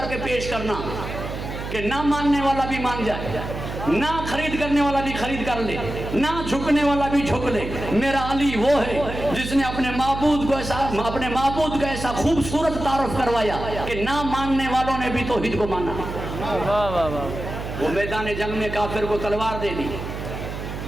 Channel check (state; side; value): noise; right; hum, 7 dB below the sound